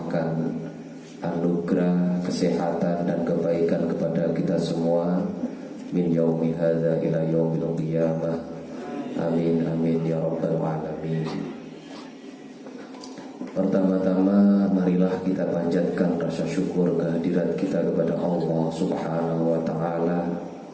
anugerah, kesehatan dan kebaikan kepada kita semua min yaumi hadza ila yaumil qiyamah. Amin amin ya rabbal alamin. Pertama-tama marilah kita panjatkan rasa syukur kehadiran kita kepada Allah Subhanahu wa taala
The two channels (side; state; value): both; identical; correlation 1.00